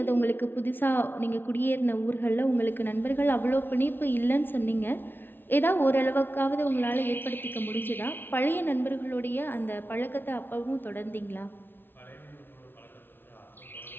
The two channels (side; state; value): right; late; 0.10 ms